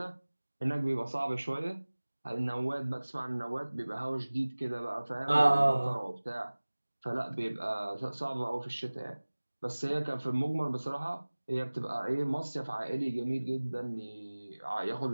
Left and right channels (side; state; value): both; inverted; correlation -1.00